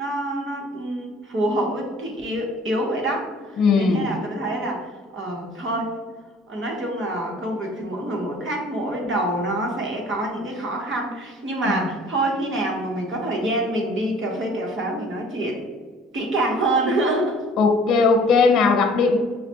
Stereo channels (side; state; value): both; normal; correlation 0.51